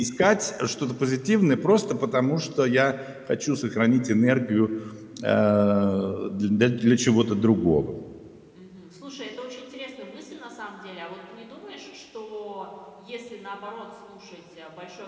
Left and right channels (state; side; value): identical; both; correlation 1.00